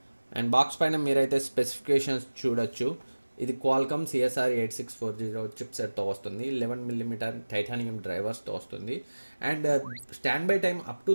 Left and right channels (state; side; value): inverted; both; correlation -1.00